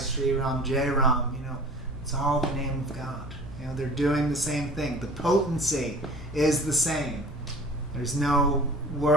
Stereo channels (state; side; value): noise; left; hum, 16 dB below the sound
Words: Sri Ram, Jai Ram, it's all the name of God. They're doing the same thing. The potency is the same. There's no